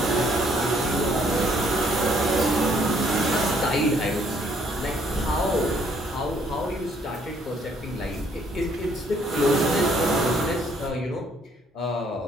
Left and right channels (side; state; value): both; normal; correlation 0.65